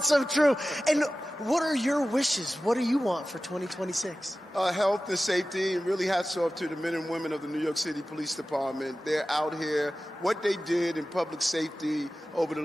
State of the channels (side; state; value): both; normal; correlation 0.95